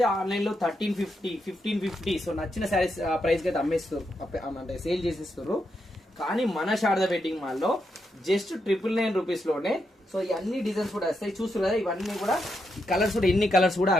ఆన్లైన్ లో 1350 సో నచ్చిన శారీస్ ప్రైస్ కి అయితే అమ్మేస్తారు, అంటే సేల్ చేసేస్తారు. కానీ మన శారదా వెడ్డింగ్ మాల్ లో జస్ట్ 999 రూపీస్ లోనే సో ఈ అన్ని డిజైన్స్ కూడా వస్తాయి. చూస్తారు కదా, ఇవన్నీ కూడా కలర్స్ కూడా ఎన్ని కలర్స్ కూడా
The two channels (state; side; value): normal; both; correlation 0.82